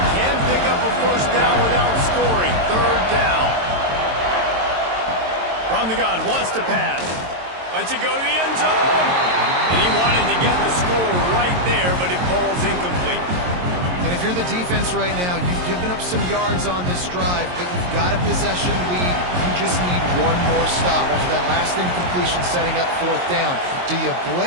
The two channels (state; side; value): late; left; 22 ms